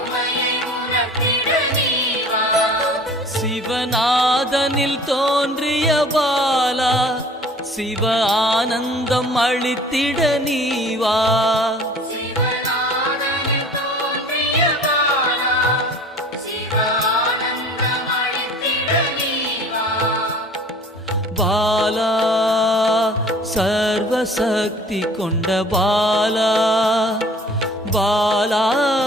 சிவநாதனில் தோன்றிய பாலா, சிவ ஆனந்தம் அளித்திட நீவா. பாலா சர்வசக்தி கொண்ட பாலா, பாலா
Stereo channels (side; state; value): both; normal; correlation 0.47